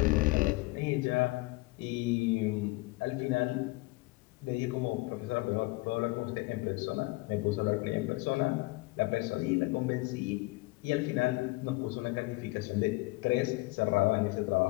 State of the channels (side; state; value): right; quieter; 23.0 dB